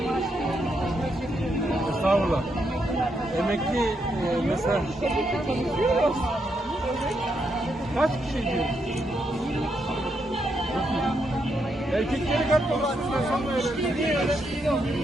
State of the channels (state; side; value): normal; both; correlation 0.79